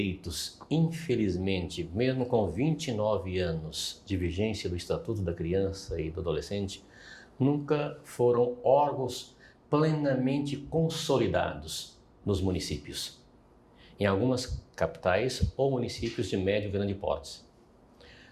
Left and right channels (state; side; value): identical; both; correlation 1.00